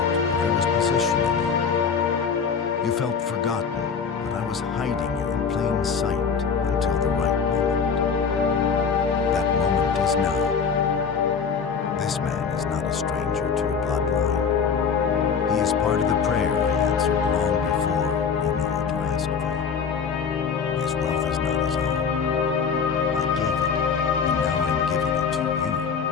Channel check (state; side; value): quieter; right; 6.2 dB